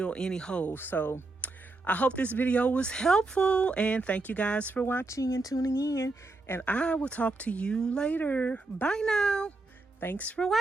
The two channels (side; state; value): left; quieter; 3.2 dB